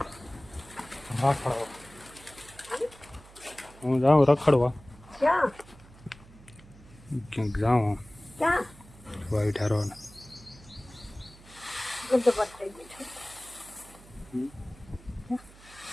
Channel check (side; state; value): right; noise; hum, 22 dB below the sound